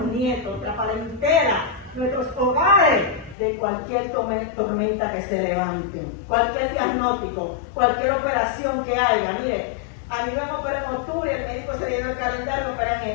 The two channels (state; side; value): drops out; right; at 3.4 s